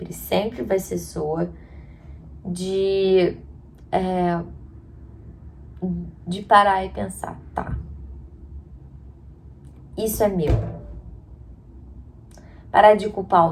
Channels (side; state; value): both; identical; correlation 1.00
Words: vai ser sua. De parar e pensar, tá, isso é meu. Parar de culpar